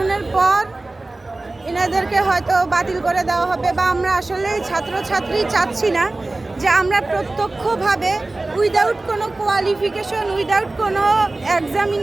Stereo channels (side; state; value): left; quieter; 3.0 dB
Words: পর এনাদেরকে হয়তো বাতিল করে দেওয়া হবে, বা আমরা আসলে ছাত্রছাত্রী চাচ্ছি না যে আমরা প্রত্যক্ষভাবে উইদাউট কোনো কোয়ালিফিকেশন, উইদাউট কোনো